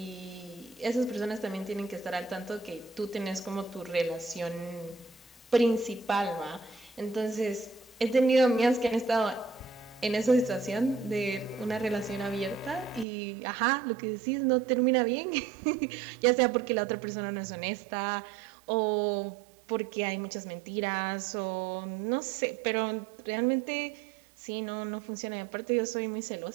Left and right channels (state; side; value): drops out; left; at 13.1 s